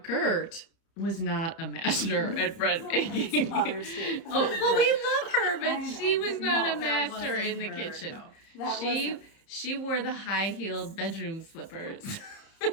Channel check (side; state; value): right; late; 31 ms